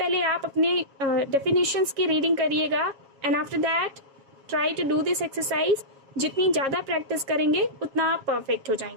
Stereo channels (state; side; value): late; left; 7.3 ms